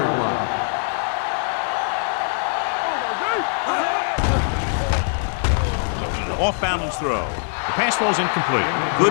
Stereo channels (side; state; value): right; silent; 64 dB below the other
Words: Off-balance throw. The pass falls incomplete.